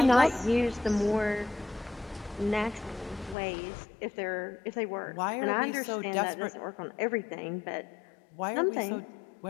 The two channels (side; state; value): right; drops out; at 3.4 s